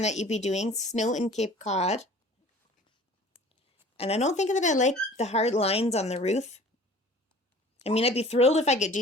that you'd be doing. Snow in Cape Cod. And I don't think that I like the hard lines on the roof. I mean, I'd be thrilled if I could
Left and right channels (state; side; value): normal; both; correlation 0.47